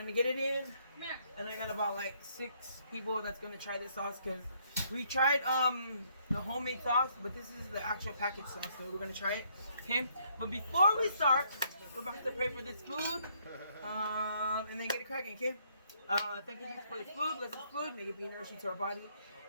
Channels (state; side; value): inverted; both; correlation -0.69